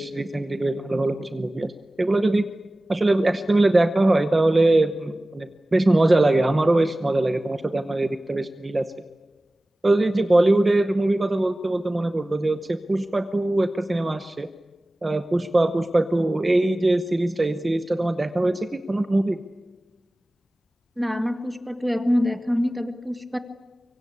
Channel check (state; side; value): normal; both; correlation 0.97